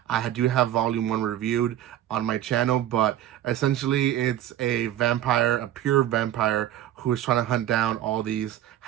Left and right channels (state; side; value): quieter; left; 12.4 dB